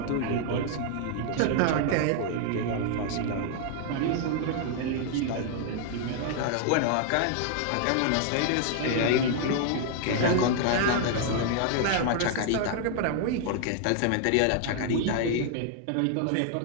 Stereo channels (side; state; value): both; different; correlation 0.00